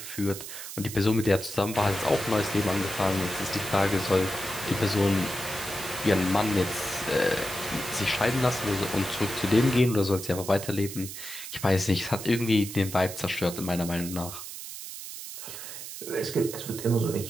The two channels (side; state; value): right; noise; hiss, 10 dB below the sound